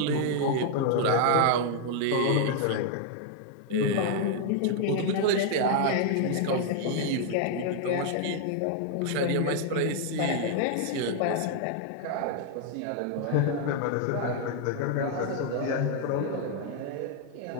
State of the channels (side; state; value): both; different; correlation -0.01